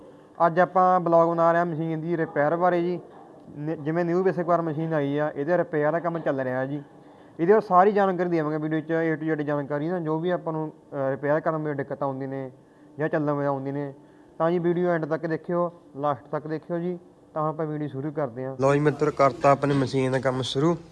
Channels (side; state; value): both; identical; correlation 1.00